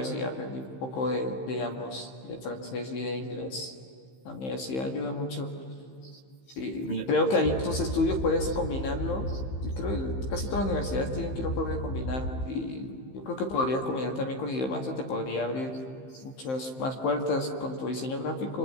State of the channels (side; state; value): right; late; 15 ms